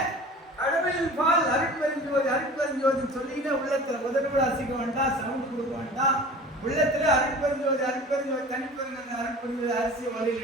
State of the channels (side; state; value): both; normal; correlation 0.40